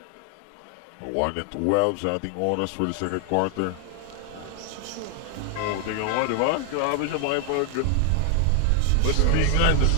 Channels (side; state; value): both; different; correlation 0.00